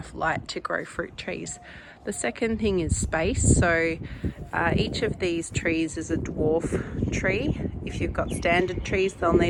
light to grow fruit trees. The second thing is space. So each of these trees is a dwarf tree. If you've got standard trees, they'll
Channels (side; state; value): both; identical; correlation 1.00